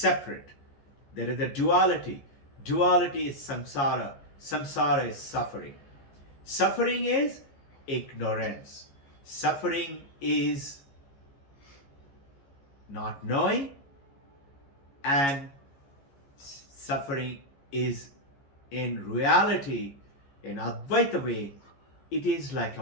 There is a duality. Duality is samsara. Samsara is suffering. Suffering is ignorance. Suffering is not knowing, and suffering is in reality, in Advaita way, it is like a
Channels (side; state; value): right; late; 14 ms